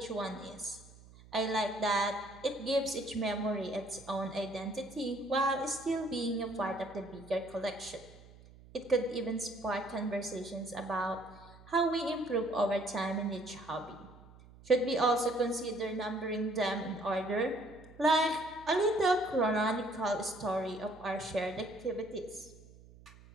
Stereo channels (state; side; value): noise; right; hum, 21 dB below the sound